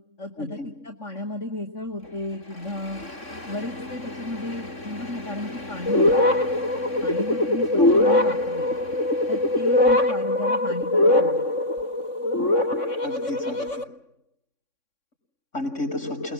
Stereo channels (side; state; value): right; late; 3.6 ms